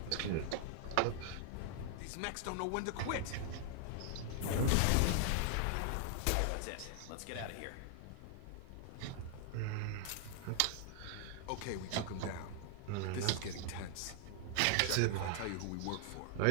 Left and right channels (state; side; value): different; both; correlation 0.00